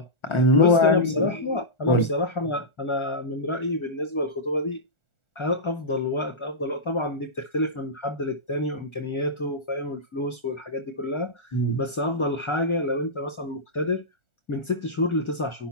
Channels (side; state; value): right; late; 1.4 ms